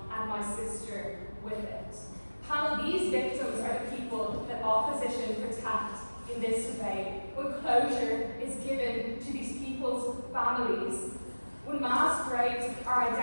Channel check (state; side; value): inverted; both; correlation -1.00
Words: and my sister with it. Panel, these victims are the people that opposition protect in this debate. When closure is given to these people's families, when mass graves are